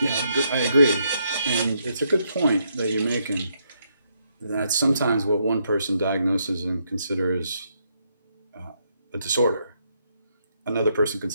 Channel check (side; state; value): both; inverted; correlation -0.76